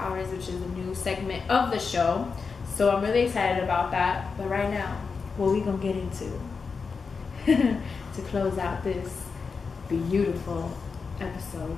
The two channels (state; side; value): quieter; right; 5.1 dB